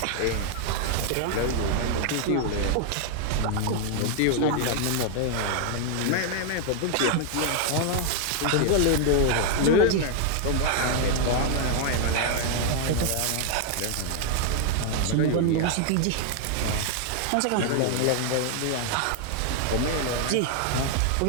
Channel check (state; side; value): different; both; correlation 0.00